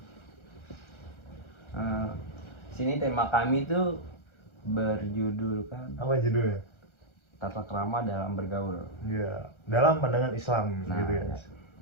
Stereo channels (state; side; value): late; right; 1.3 ms